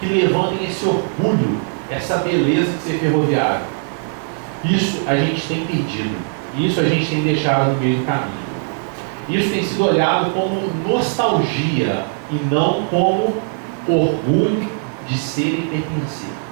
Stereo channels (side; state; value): left; silent; digital silence